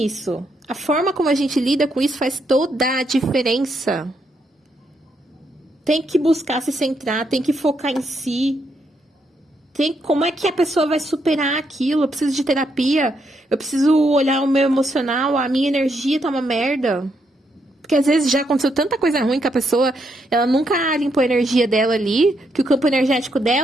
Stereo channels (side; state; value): both; normal; correlation 0.78